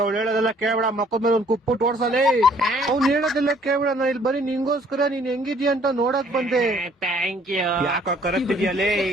ಹೇಳೋದೆಲ್ಲ ಕೇಳಬೇಡ, ಮಕ್ಕದ ಮೇಲೆ ಒಂದ್ ಕುಪ್ಪುಟ್ಟು ಓಡ್ಸಲೇ. ಅವ್ನು ಹೇಳೋದೆಲ್ಲ ಕೇಳಬೇಡ, ನಾನು ಇಲ್ಲಿ ಬರೀ ನಿಂಗೋಸ್ಕರ ನೀನ್ ಹೆಂಗಿದ್ಯಾ ಅಂತ ನೋಡಕ್ ಬಂದೆ. Thank you. ಯಾಕೋ ಕರೆಕ್ತಿದ್ಯಲ್ಲೇ,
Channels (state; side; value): normal; both; correlation 0.60